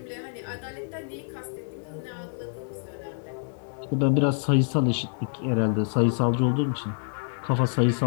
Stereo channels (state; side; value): silent; right; 60 dB below the other